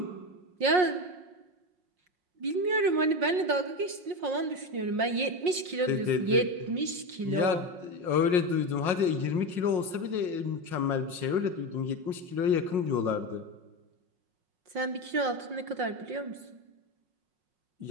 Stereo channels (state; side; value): late; left; 5.5 ms